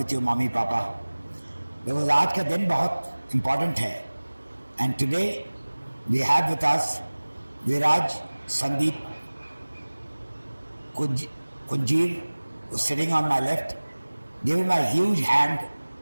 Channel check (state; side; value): inverted; both; correlation -1.00